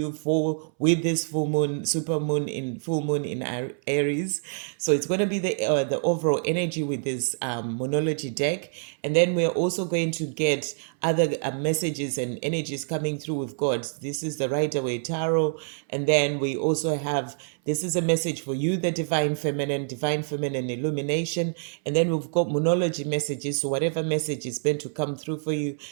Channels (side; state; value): left; silent; 61 dB below the other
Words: with this full moon, full moon in Aries. So it's going to be the overall energy with this Moonology deck, and then we're also going to get other messages and energies coming through with God. This is the Rider-Waite Tarot, and then we also have, this is a message for you, the Divine Feminine Illumination, and then we've got Moonology messages, so whatever message is meant to come through for you,